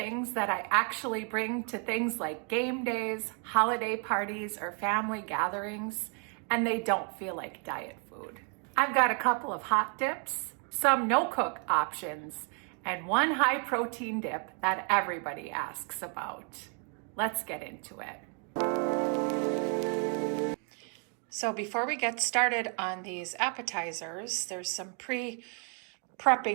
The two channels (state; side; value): quieter; left; 40.0 dB